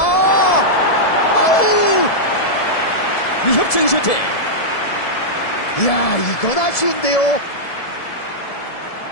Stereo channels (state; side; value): late; right; 1.7 ms